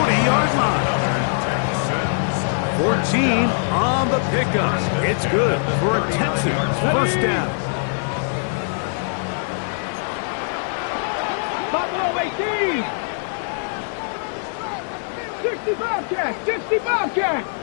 line. 14 on the pickup. It's good for a Texans first down. Buffalo 18. 60 Bobcat. 60 Bobcat.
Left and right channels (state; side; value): silent; right; digital silence